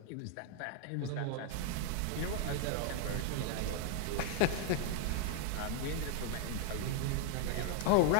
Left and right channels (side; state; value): both; different; correlation 0.00